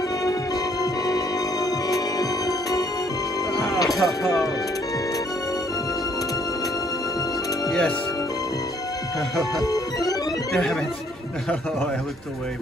Oh, yes. Damn it. Oh, I looked away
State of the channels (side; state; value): both; normal; correlation 0.65